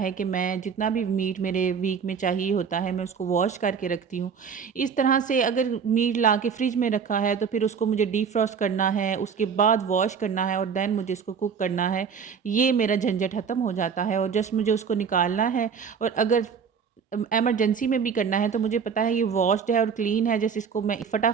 कि मैं जितना भी मीट मेरे वीक में चाहिए होता है मैं उसको वॉश करके रखती हूँ। इस तरह से अगर मीट ला के फ्रिज में रखा है तो फिर उसको मुझे डीफ्रॉस्ट करना है, उसके बाद वॉश करना है और दैन मुझे इसको कुक करना है। ये मेरा झंझट ख़त्म हो जाता है और जस्ट मुझे उसको निकालना है। और अगर इमरजेंसी में भी करना है तो मुझे पता है ये वॉश्ड है और क्लीन है, जैसे इसको मैं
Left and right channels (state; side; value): quieter; left; 6.5 dB